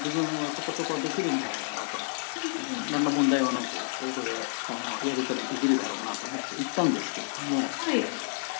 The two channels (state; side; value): silent; right; digital silence